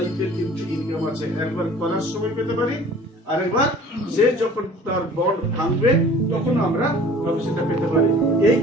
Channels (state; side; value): normal; both; correlation 0.48